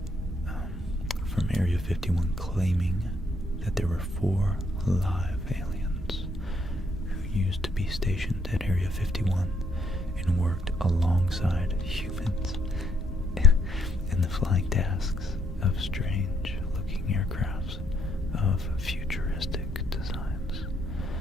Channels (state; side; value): normal; both; correlation 0.72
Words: from Area 51 claiming that there were 4 live aliens who used to be stationed at Area 51 and worked alongside humans in the flying tasks of strange-looking aircrafts of futuristic designs.